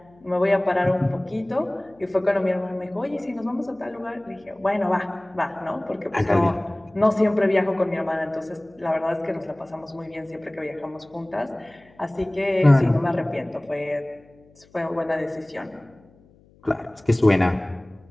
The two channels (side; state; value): left; noise; hum, 29 dB below the sound